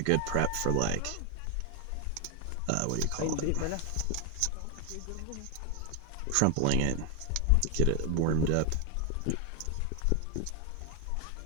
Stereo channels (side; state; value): both; different; correlation 0.00